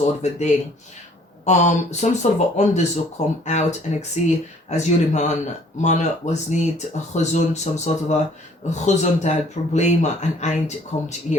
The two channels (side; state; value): both; normal; correlation 0.58